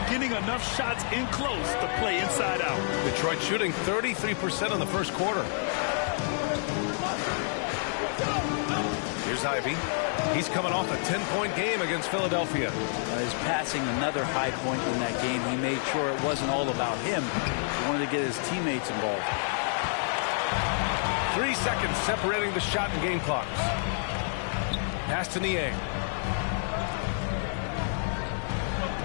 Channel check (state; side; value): silent; right; 59 dB below the other